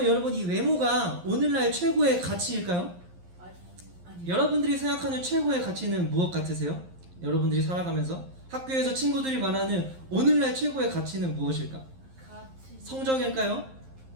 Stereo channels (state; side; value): late; left; 11 ms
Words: 여러분 이 외모가 오늘날 최고의 가치일까요? 아니. 여러분들이 생각하는 최고의 가치는 무엇 같으세요? 여러분들이 살아가면서 학교에서 친구들이 말하는 오늘날 최고의 가치는 무엇일까? 가치. 성적일까요?